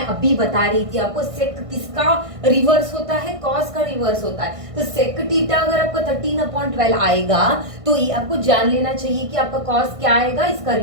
अभी बता रही थी आपको। सेक किसका रिवर्स होता है, कॉस का रिवर्स होता है। तो सेक थीटा अगर आपका 13/12 आएगा तो ये आपको जान लेना चाहिए कि आपका कॉस क्या आएगा, इसका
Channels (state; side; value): late; left; 1.6 ms